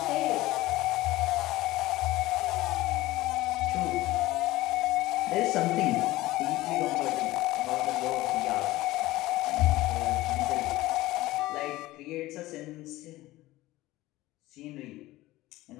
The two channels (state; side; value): quieter; right; 17.6 dB